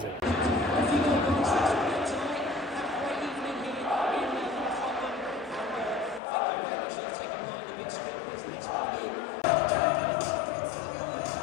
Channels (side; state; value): right; drops out; at 6.2 s